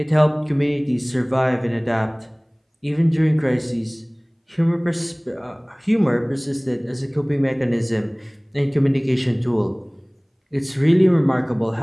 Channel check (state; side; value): identical; both; correlation 1.00